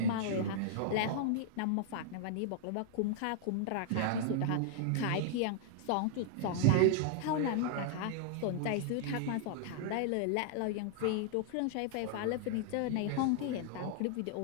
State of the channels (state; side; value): different; both; correlation -0.01